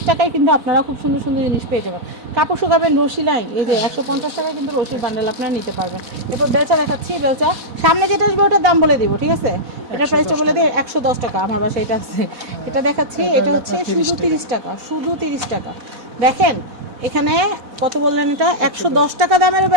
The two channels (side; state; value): left; late; 4.1 ms